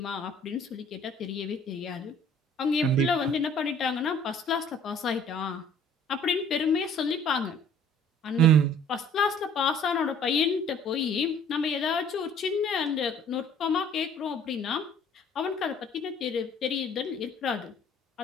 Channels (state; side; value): normal; both; correlation 0.55